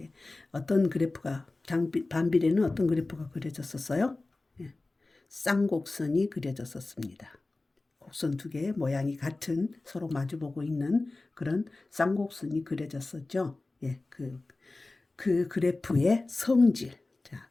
어떤 그래프가 반비례는 어떤 그래프가 그려졌었어요? 예, 쌍곡선이 그려졌었습니다. 곡선 두 개의 모양이 같은 서로 마주보고 있는 그런 쌍곡선이 그려졌었죠. 예, 그 그래프의 성질. 자,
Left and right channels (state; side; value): quieter; right; 3.2 dB